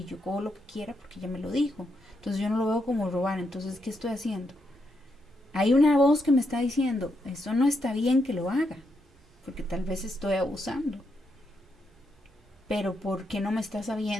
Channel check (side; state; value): both; normal; correlation 0.81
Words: yo cojo lo que quiera porque ella me lo dijo, entonces yo no lo veo como robar, entonces ¿qué estoy haciendo? Hay una voz que me está diciendo, eso no está bien que lo haga, porque tal vez estoy abusando, pero ¿por qué no me está